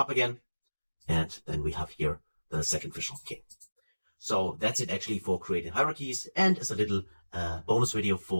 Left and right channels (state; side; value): inverted; both; correlation -1.00